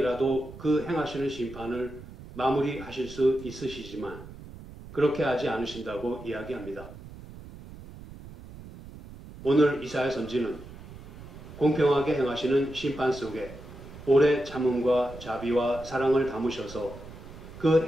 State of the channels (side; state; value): right; noise; rumble, 15 dB below the sound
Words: 그 행하시는 심판을 마무리하실 수 있으시지만 그렇게 하지 않으신다고 이야기합니다. 오늘 이사야 선지는 공평하게 행하시는 심판 속에 오래 참음과 자비와 사랑을 담으셔서 그